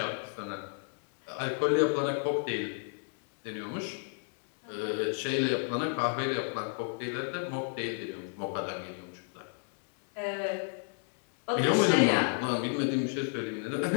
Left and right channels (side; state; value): right; silent; 56 dB below the other